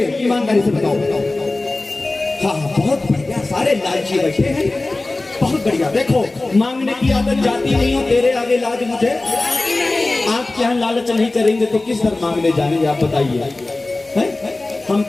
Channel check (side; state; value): right; quieter; 3.0 dB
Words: ईमानदारी से बताओ। हाँ हाँ, बहुत बढ़िया, सारे लालची बैठे हैं, बहुत बढ़िया। देखो, मांगने की आदत जाती नहीं हो, तेरे आगे लाज मुझे। आप क्या लालच नहीं करेंगे तो किस तरह मांगने जाएंगे आप बताइए। हम